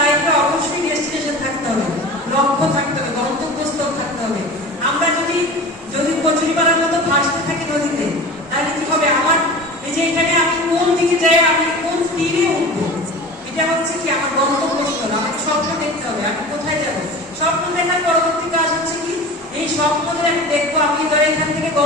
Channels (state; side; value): normal; both; correlation 0.36